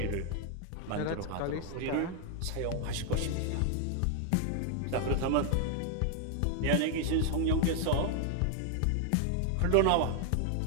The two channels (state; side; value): different; both; correlation 0.00